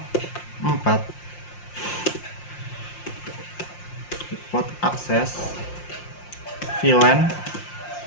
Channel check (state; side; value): late; right; 5.7 ms